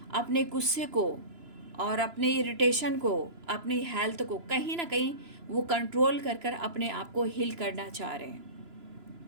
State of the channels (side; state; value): left; late; 3.0 ms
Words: अपने गुस्से को और अपने इरिटेशन को, अपनी हेल्थ को कहीं ना कहीं वो कंट्रोल कर कर अपने आप को हील करना चाह रहे हैं।